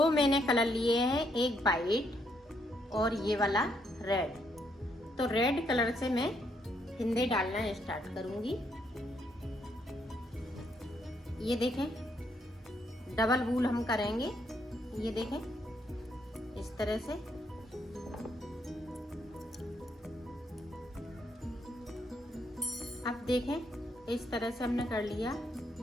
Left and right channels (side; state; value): both; normal; correlation 0.74